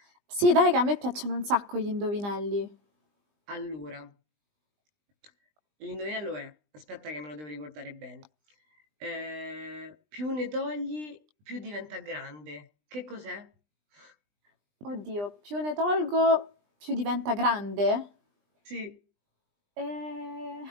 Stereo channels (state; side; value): late; left; 20 ms